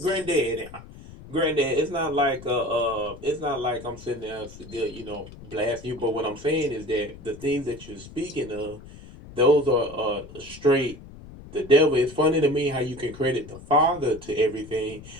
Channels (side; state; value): left; noise; rumble, 17 dB below the sound